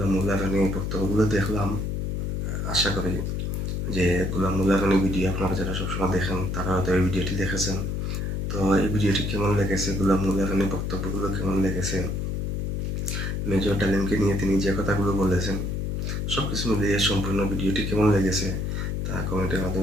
মোল্লা রানীর বক্তব্যগুলো দেখলাম। আশা করি যে গোলাম মোল্লা রানী ভিডিও আপনারা যারা সবসময় দেখেন তারা হয়তো এই ভিডিওটি দেখেছেন। তো এই ভিডিওটি কেমন লেগেছে, গোলাম মোল্লা রানীর বক্তব্যগুলো কেমন লেগেছে, মেজর ডালিমকে নিয়ে তিনি যে কথাগুলো বলেছেন, সব কিছু মিলিয়ে সম্পূর্ণ ভিডিওটি কেমন লেগেছে তা কমেন্টের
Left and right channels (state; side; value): noise; left; hum, 1 dB below the sound